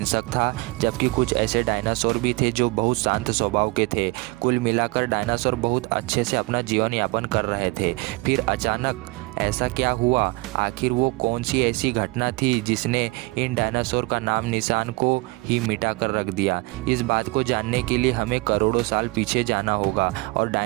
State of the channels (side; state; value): left; quieter; 24.4 dB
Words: था, जबकि कुछ ऐसे डायनासोर भी थे जो बहुत शांत स्वभाव के थे। कुल मिलाकर डायनासोर बहुत अच्छे से अपना जीवन यापन कर रहे थे। फिर अचानक ऐसा क्या हुआ? आखिर वो कौन सी ऐसी घटना थी जिसने इन डायनासोर का नाम निशान को ही मिटा कर रख दिया? इस बात को जानने के लिए हमें करोड़ों साल पीछे जाना होगा और